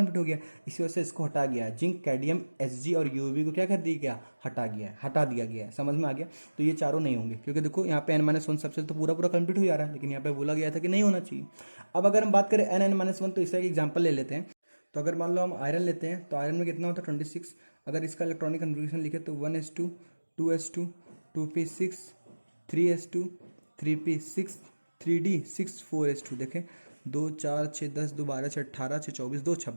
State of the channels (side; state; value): both; inverted; correlation -1.00